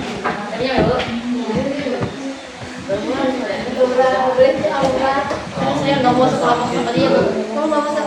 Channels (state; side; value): identical; both; correlation 1.00